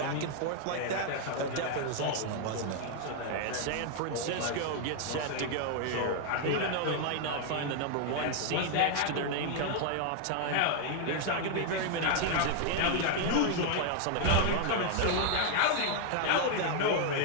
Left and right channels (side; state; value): both; different; correlation 0.00